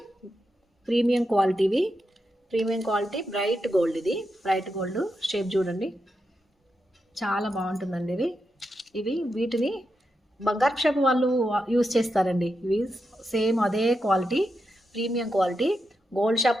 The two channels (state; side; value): normal; both; correlation 0.86